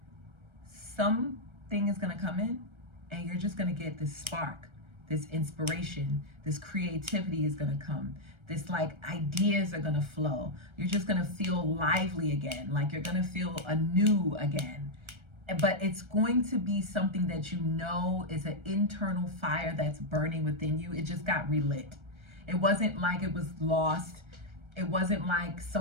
something is gonna come in and you're just gonna get this spark, this inspiration, this creativity is gonna come. This like ideas are gonna flow. You're just gonna feel lively again, like you're gonna feel anew again. But it's going to be something that you know is an internal fire that's burning within you. It just got relit. It wasn't like it was lost. It wasn't like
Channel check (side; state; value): left; late; 1.3 ms